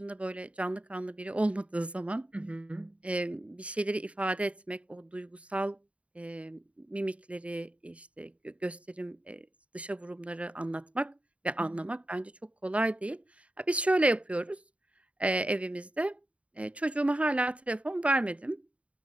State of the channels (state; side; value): late; left; 0.064 ms